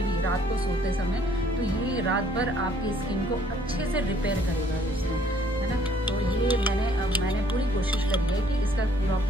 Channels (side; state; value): both; normal; correlation 0.62